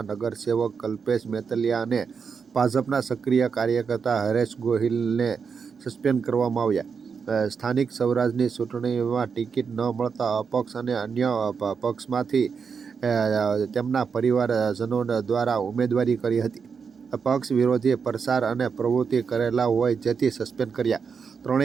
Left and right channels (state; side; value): quieter; left; 6.0 dB